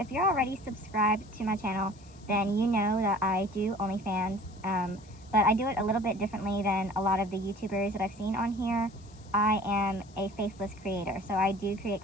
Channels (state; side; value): noise; left; hiss, 26 dB below the sound